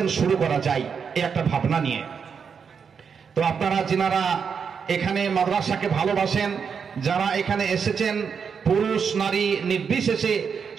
শুরু করা যায়, এই একটা ভাবনা নিয়ে। তো আপনারা যিনারা এখানে মাদ্রাসাকে ভালোবাসেন, যারা এখানে এসেছেন, পুরুষ নারী নির্বিশেষে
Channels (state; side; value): quieter; left; 6.4 dB